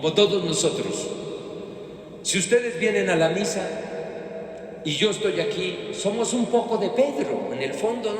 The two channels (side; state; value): both; identical; correlation 1.00